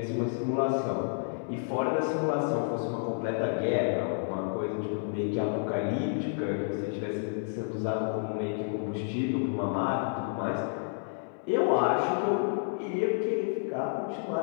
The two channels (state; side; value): silent; right; 57 dB below the other